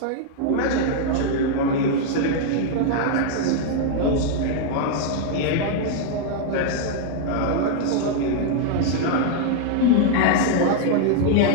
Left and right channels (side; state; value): both; different; correlation -0.01